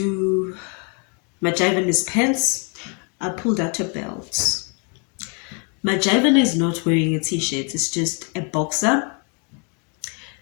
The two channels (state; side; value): quieter; right; 36.7 dB